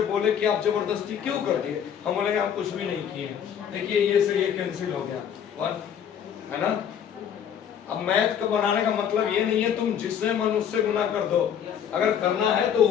बोले कि आप जबरदस्ती क्यों कर दिए, हम बोलेंगे हम कुछ भी नहीं किए। देखिए ये से ये कैंसिल हो गया 1, है ना। अब मैथ का बनाने का मतलब ये नहीं है तुम जिससे मन उससे गुना कर दो। अगर करना है तो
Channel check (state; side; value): quieter; right; 8.6 dB